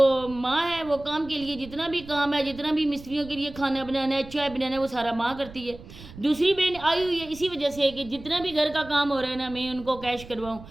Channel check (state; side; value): noise; right; rumble, 17 dB below the sound